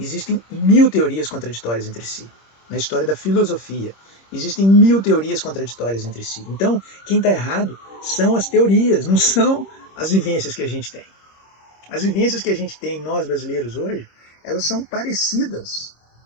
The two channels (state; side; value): late; right; 26 ms